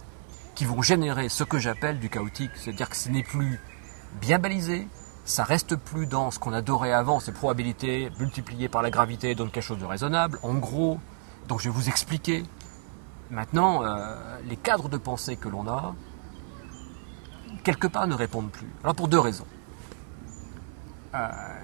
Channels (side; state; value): left; silent; 58 dB below the other